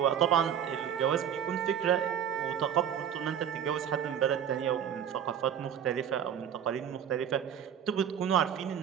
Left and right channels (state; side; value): quieter; left; 8.9 dB